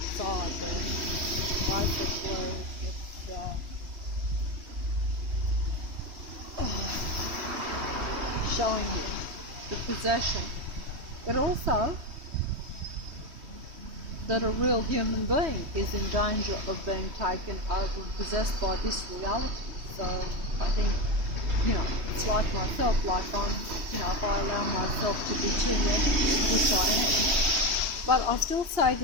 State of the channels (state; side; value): late; left; 3.1 ms